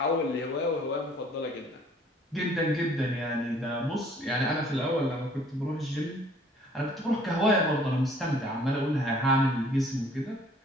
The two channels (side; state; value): both; normal; correlation 0.57